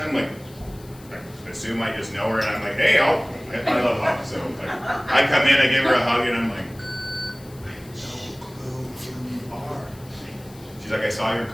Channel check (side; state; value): left; noise; hiss, 23 dB below the sound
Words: I'm like, I assume I just know her, and I'm like, hey, I love hugs, so like, I come in, I give her a hug, and I'm like, I have no clue who you are. She's like, I saw your